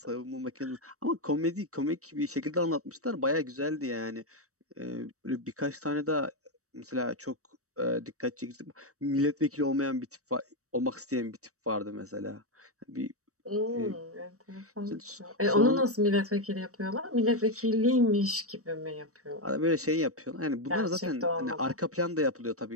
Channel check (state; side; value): late; left; 0.65 ms